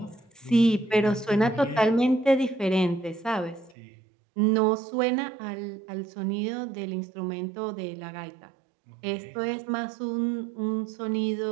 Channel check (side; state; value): left; drops out; at 3.8 s